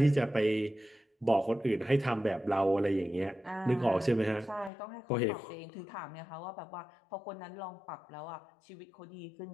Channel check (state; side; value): drops out; right; at 4.7 s